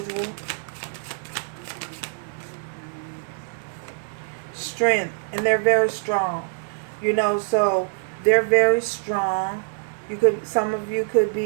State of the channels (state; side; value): silent; left; digital silence